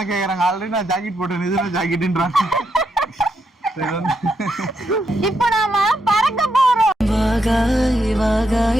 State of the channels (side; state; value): both; normal; correlation 0.80